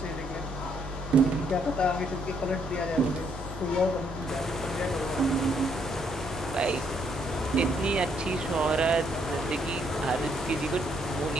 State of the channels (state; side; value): normal; both; correlation 0.71